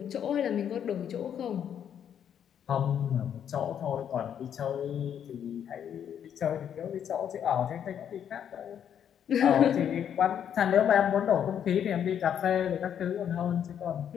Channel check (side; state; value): right; quieter; 9.0 dB